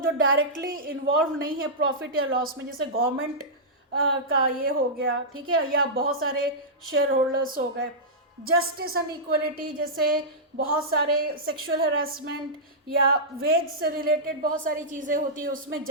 जो डायरेक्टली इन्वॉल्व नहीं है प्रॉफिट या लॉस में, जैसे गवर्नमेंट का ये हो गया, ठीक है, या बहुत सारे शेयर होल्डर्स हो गए. जस्टिस एंड इक्वलिटी, जैसे बहुत सारे सेक्सुअल हरासमेंट या वेज से रिलेटेड बहुत सारी चीज़ें होती है, उसमें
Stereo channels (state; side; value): normal; both; correlation -0.12